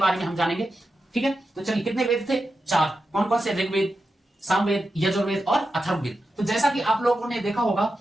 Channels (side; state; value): both; normal; correlation 0.89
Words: में हम जानेंगे, ठीक है। तो चलिए, कितने वेद थे? 4। कौन कौन से? ऋग्वेद, सामवेद, यजुर्वेद और अथर्ववेद। तो जैसा कि आप लोगों ने देखा होगा